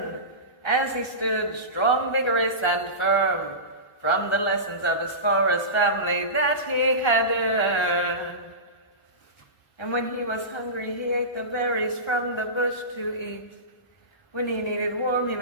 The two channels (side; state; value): right; late; 1.3 ms